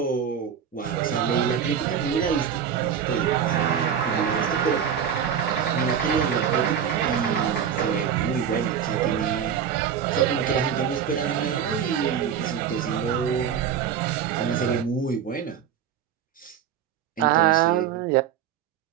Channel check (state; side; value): quieter; left; 8.2 dB